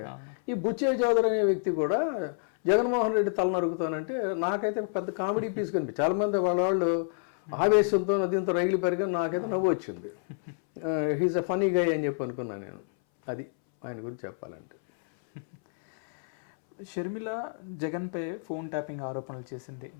ఈ బుచ్చయ్య చౌదరి అనే వ్యక్తి కూడా జగన్మోహన్ రెడ్డి తల నరుగుతానంటే నాకైతే పెద్ద కామెడీ పీస్ కనిపి. చాలామంది వాళ్ళు ఆవేశంతో దీంతో రైలు పెరిగి నాకైతే నవ్వు వచ్చింది. హీజ్ అ ఫనీ గై అని చెప్పి అనుకున్నాను నేను. అది ఆయన గురించి చెప్పాలంటే. షర్మిల జగన్పై ఫోన్ ట్యాపింగ్ ఆరోపణలు చేసింది.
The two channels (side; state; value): right; silent; 59 dB below the other